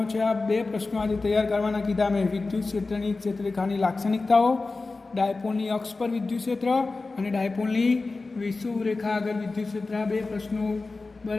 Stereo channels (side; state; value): right; quieter; 3.6 dB